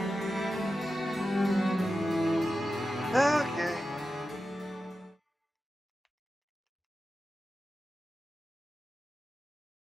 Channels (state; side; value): normal; both; correlation 0.92